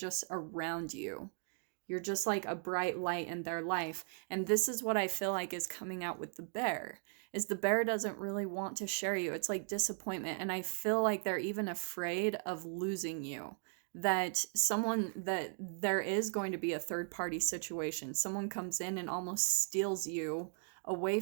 around you. You're just like a bright light in their life. And this is what I feel like is coming out with the bear, is the bear doesn't really want to share you. It's like disappointment. And I feel like they're even afraid of losing you. That there is going to be a third party situation. Someone comes in and almost steals you away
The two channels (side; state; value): left; silent; 53 dB below the other